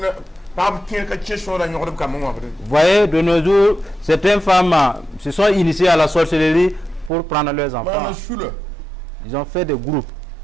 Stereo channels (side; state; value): left; drops out; at 7.1 s